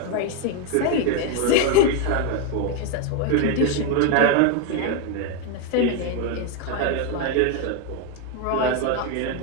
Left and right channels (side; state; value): both; different; correlation 0.02